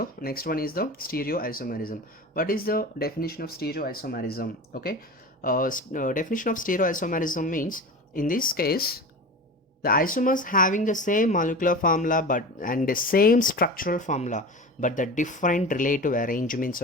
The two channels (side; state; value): both; normal; correlation 0.31